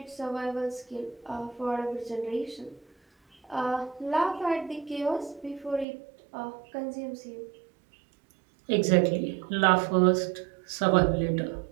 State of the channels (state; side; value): drops out; left; at 5.9 s